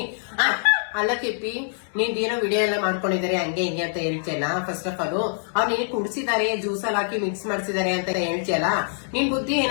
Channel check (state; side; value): silent; right; 62 dB below the other